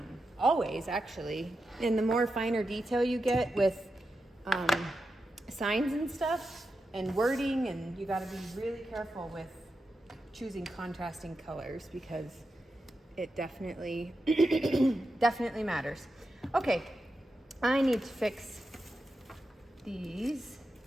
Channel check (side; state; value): both; normal; correlation 0.89